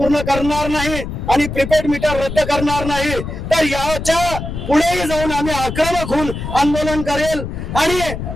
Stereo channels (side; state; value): left; noise; rumble, 7 dB below the sound